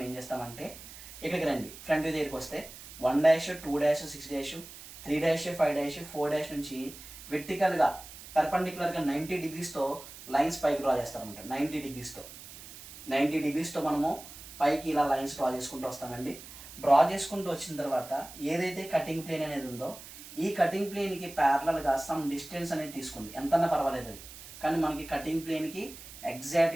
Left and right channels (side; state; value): right; noise; hiss, 15 dB below the sound